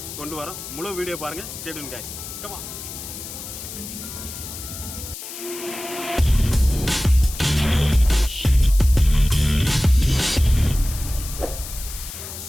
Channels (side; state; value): left; noise; hiss, 10 dB below the sound